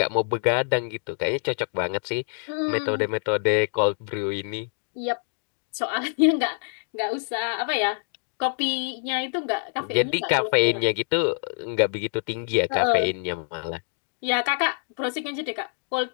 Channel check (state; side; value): silent; right; digital silence